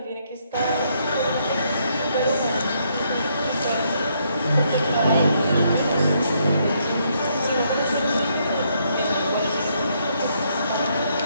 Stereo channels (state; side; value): inverted; both; correlation -0.73